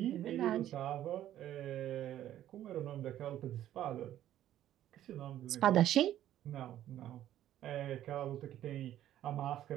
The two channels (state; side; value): quieter; left; 12.2 dB